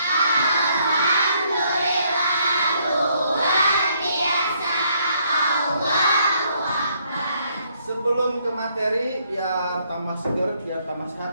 luar biasa. Allahu Akbar. Sebelum ke materi, biar tambah seger, biar tambah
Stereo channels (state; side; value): inverted; both; correlation -0.70